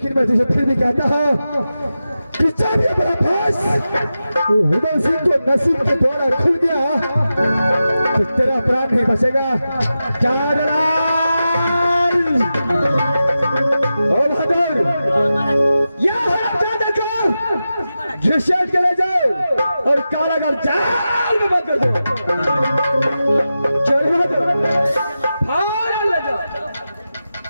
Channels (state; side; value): inverted; both; correlation -0.92